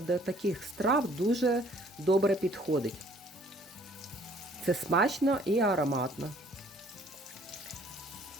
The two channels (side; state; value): both; normal; correlation 0.58